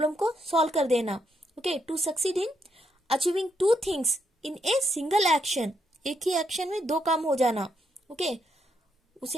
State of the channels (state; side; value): normal; both; correlation 0.77